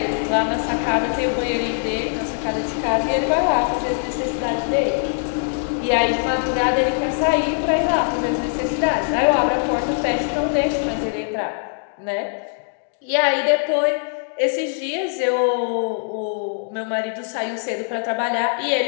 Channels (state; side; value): silent; right; 64 dB below the other